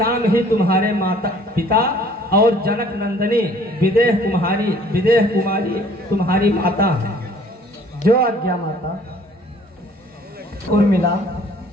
ही तुम्हारे माता पिता और जनक नंदिनी विदेह कुमारी तुम्हारी माता है। जो आज्ञा माता। उर्मिला,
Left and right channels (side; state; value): both; normal; correlation 0.55